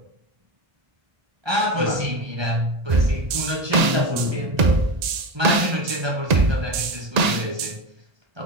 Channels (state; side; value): late; left; 1.8 ms